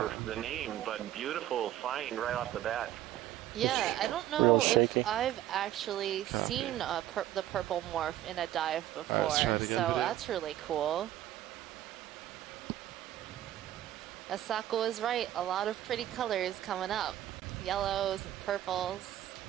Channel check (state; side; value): quieter; left; 13.0 dB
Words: the name, but beautiful find right off the bat. Yeah, I don't know Real if shaky. I've actually seen the purple morph in a dive before, try it again, so Peter. that's really cool. Asako is right. A lot of pretty colors coming up. Yellows and purples.